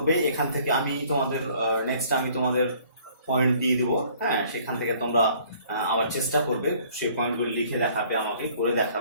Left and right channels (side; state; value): both; inverted; correlation -0.57